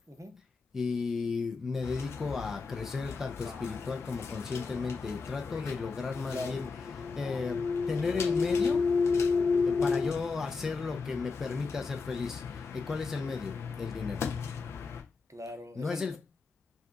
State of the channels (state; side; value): quieter; right; 4.4 dB